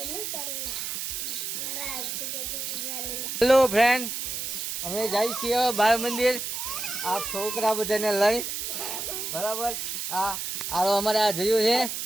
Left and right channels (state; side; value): noise; right; hiss, 4 dB below the sound